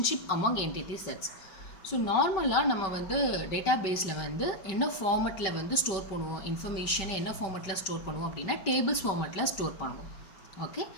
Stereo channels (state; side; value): late; right; 5.2 ms